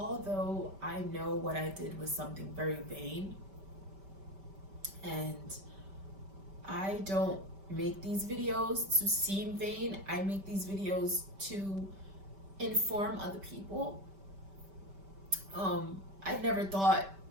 I know what I did was something very vain, and I don't make these videos to seem vain, I make these videos to inform other people. I never thought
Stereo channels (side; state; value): left; late; 5.1 ms